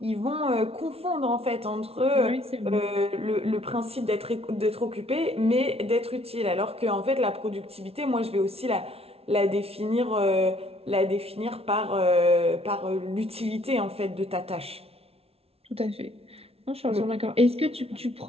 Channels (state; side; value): late; left; 0.29 ms